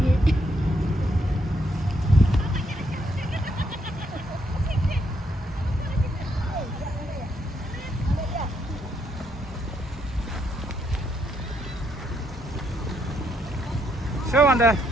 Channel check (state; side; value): normal; both; correlation 0.75